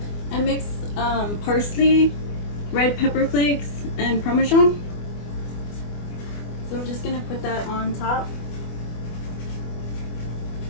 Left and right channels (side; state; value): right; late; 24 ms